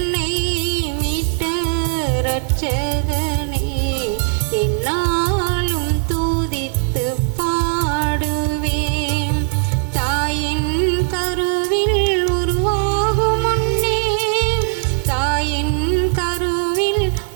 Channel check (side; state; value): left; silent; 61 dB below the other